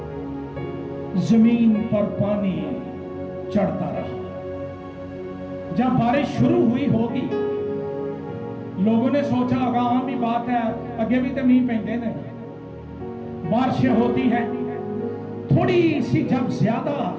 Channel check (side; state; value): both; identical; correlation 1.00